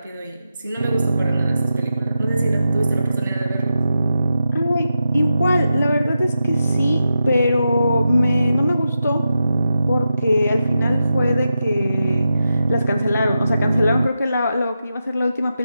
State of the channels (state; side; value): inverted; both; correlation -0.89